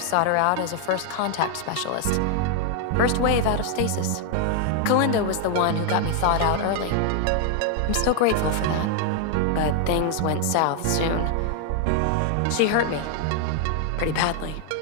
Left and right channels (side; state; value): both; different; correlation 0.00